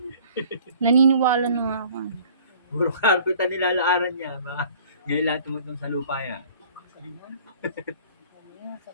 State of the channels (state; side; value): inverted; both; correlation -0.50